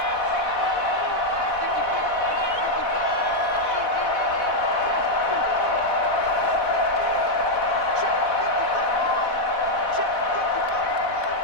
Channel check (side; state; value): right; late; 4.1 ms